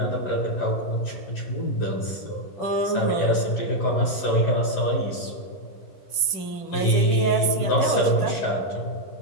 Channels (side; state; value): right; late; 10 ms